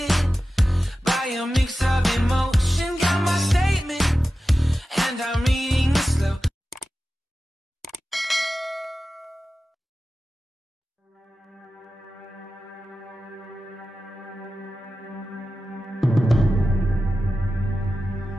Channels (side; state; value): both; normal; correlation 0.93